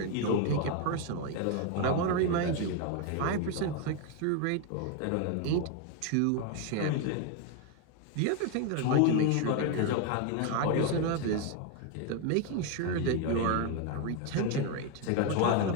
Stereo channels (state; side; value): different; both; correlation 0.01